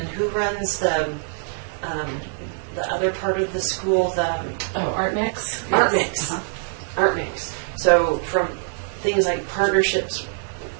who runs the other part of the school, Art Mix. Art Yes. Mix. Art Mix. So from things like partnerships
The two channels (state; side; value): silent; left; digital silence